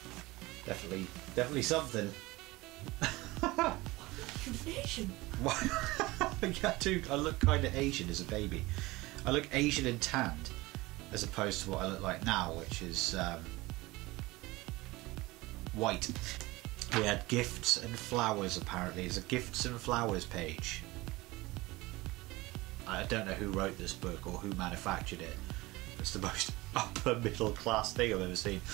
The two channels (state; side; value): quieter; left; 20.9 dB